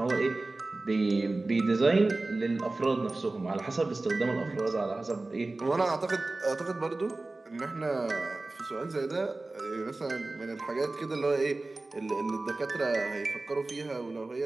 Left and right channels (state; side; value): quieter; left; 3.1 dB